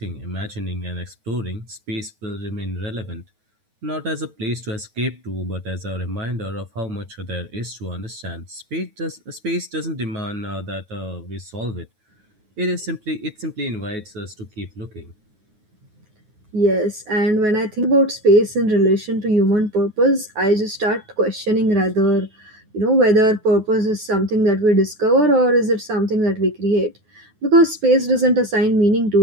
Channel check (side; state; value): left; late; 9.4 ms